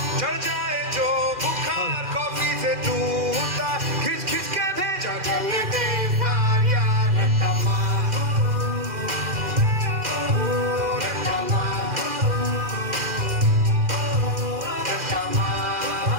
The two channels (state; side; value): late; left; 2.4 ms